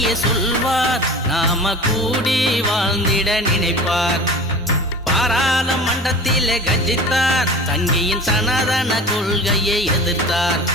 சொல்வார், நாம கூடி வாழ்ந்திட நினைப்பார். பாராளுமன்றத்திலே கர்ஜித்தார், சங்கியின் சனாதன கொள்கையை எதிர்த்தார்.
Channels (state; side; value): normal; both; correlation 0.36